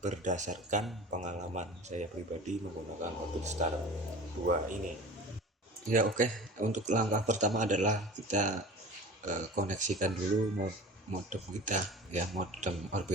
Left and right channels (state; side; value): normal; both; correlation 0.38